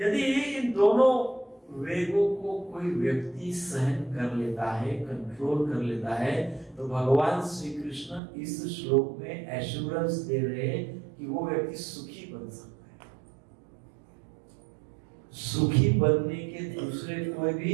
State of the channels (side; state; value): left; drops out; at 8.2 s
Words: इन दोनों वेगों को कोई व्यक्ति सहन कर लेता है, कंट्रोल कर लेता है, तो भगवान श्री कृष्ण इस श्लोक में एश्योरेंस दे रहे हैं कि वो व्यक्ति सुखी बन सकता है। सुखी बनने के दूसरे कोई